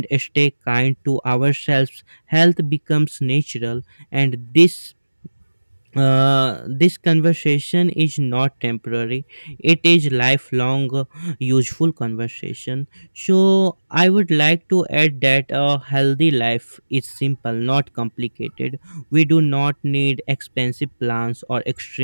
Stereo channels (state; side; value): inverted; both; correlation -1.00